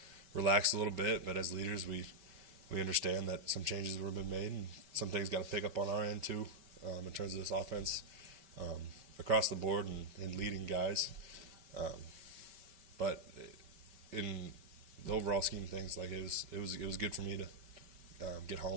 relax a little bit. But as leaders, we understand that some changes have been made, and some things got to pick up on our end too, in terms of this offense, across the board and leading guys. But in the overall scheme of things, like it was good for me to get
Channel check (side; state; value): left; late; 5.1 ms